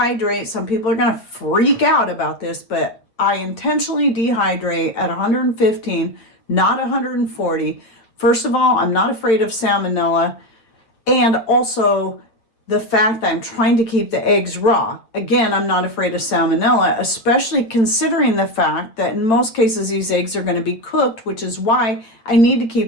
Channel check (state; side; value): late; right; 8.9 ms